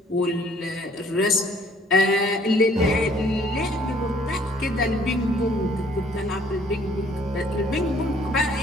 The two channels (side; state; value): both; normal; correlation 0.60